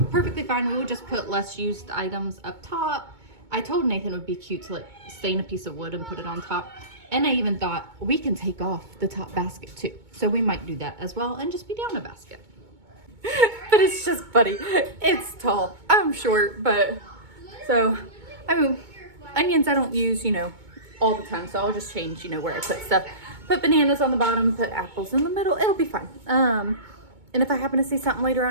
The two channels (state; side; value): late; left; 2.2 ms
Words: perfectly fine. We will just put less used items up top. I told Nathan it would be cute to like stain a piece of wood and put it on top. And I even thought we can take off the top basket too. So we might do that as well and just be down a basket. But it's just funny. It's tall. I'm short, but so, I mean, onions I don't use, you know, all the time. So I'll just change, you know, where I put stuff. Put bananas on the bottom, put apples in the middle. It'll be fine. And if I happen to see something later